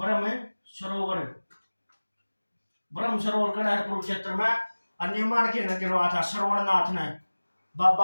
सरोवर, ब्रह्म सरोवर कड़ा है कुरुक्षेत्र में। निर्माण के न करवाया था श्रवणनाथ ने,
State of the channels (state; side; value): inverted; both; correlation -1.00